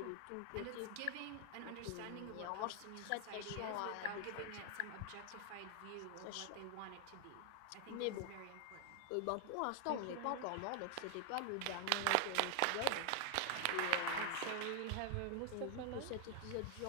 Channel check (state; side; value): different; both; correlation 0.00